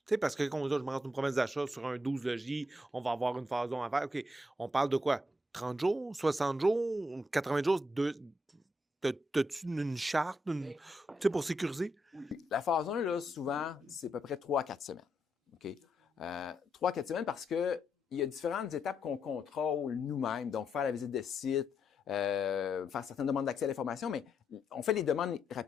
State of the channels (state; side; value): normal; both; correlation 0.80